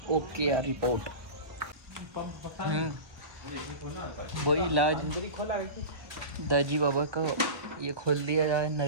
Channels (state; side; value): late; left; 1.2 ms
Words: ओके यार रिपोर्ट। वही इलाज दाजी बाबा का ये खोल दिया जाए